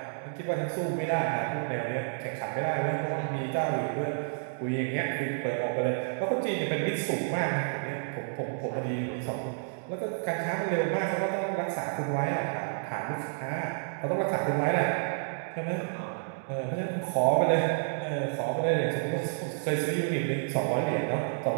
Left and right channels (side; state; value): left; silent; digital silence